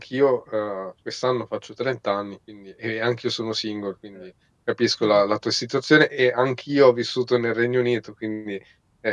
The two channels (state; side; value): identical; both; correlation 1.00